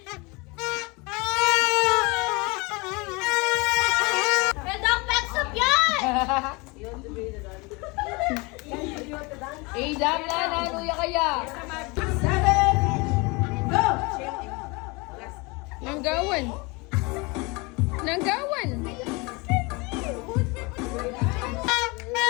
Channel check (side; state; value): right; quieter; 27.0 dB